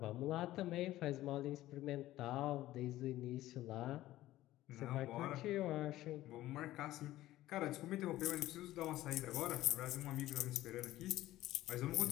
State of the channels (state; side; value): quieter; right; 15.3 dB